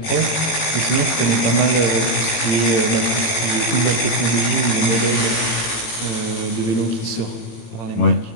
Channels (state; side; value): late; right; 18 ms